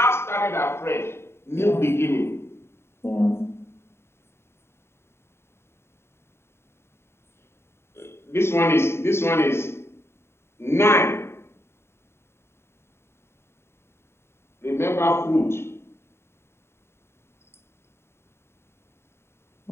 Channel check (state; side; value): late; right; 0.12 ms